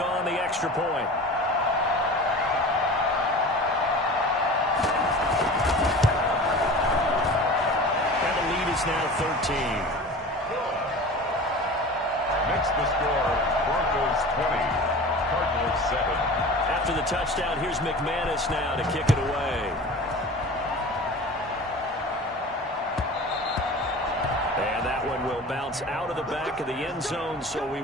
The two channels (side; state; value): both; normal; correlation 0.37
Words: on the extra point. And the lead is now 13. Next the score, Broncos 20, Cardinals 7. After the touchdown, here's McManus now to kick it away. And that one will bounce out of the back of the end zone, so we